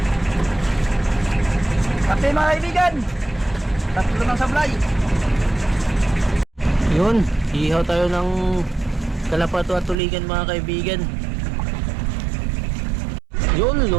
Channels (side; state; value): left; drops out; at 10.0 s